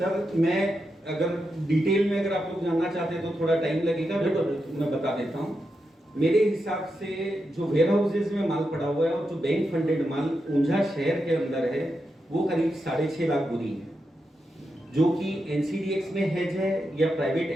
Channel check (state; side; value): normal; both; correlation 0.86